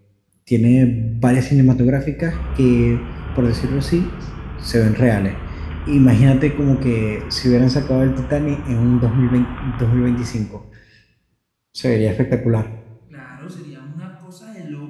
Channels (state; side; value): identical; both; correlation 1.00